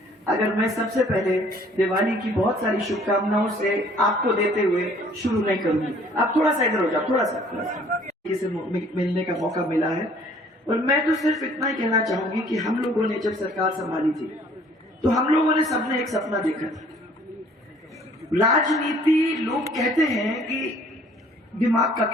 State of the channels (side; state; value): both; normal; correlation 0.57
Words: अगर मैं सबसे पहले दिवाली की बहुत सारी शुभकामनाओं से आपको देते हुए शुरू नहीं करूंगी। आप थोड़ा सा इधर हो जाओ, थोड़ा सा इसे मिलने का मौका मिला है। और मैं तो सिर्फ इतना ही कहना चाहूंगी कि हम लोगों ने जब सरकार संभाली थी तो हम लोगों ने सबने एक सपना देखा था। राजनीति लोग कहते हैं कि दिमाग का